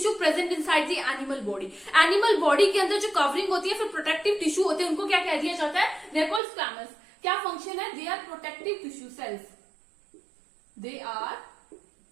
present inside the animal body. Animal body के अंदर जो कवरिंग होती है, फिर प्रोटेक्टिव टिश्यू होते हैं, उनको क्या कह दिया जाता है? They are called squamous. क्या फंक्शन है? They are protective tissue cells, they are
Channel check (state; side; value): drops out; left; at 6.4 s